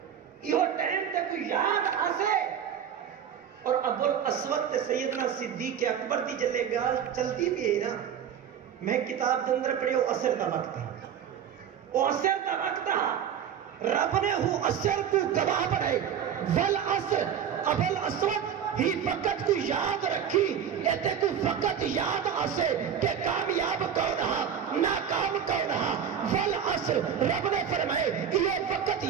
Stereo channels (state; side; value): quieter; left; 8.5 dB